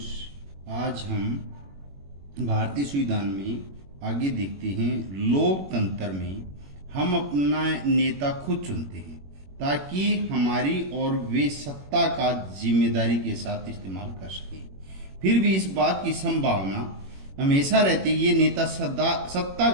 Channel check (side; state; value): left; late; 21 ms